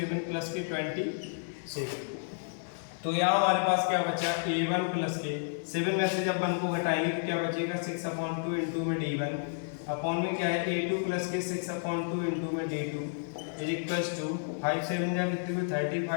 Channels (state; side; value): silent; right; digital silence